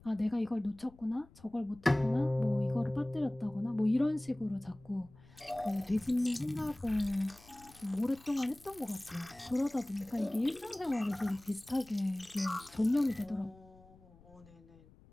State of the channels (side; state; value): left; noise; rumble, 24 dB below the sound